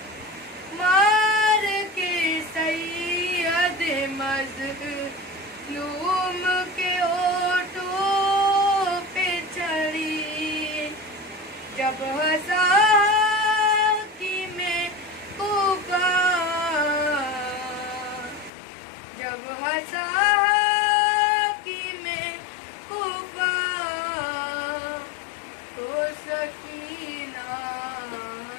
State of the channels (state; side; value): drops out; right; at 18.5 s